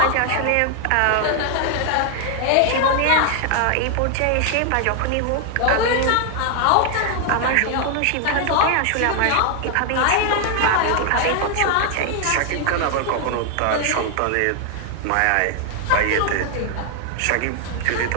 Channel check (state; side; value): different; both; correlation 0.00